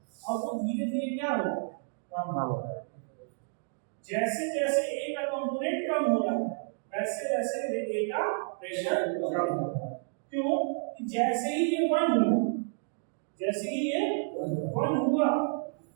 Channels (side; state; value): left; silent; digital silence